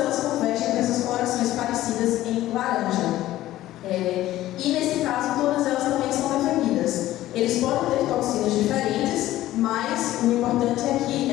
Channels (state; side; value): quieter; right; 14.9 dB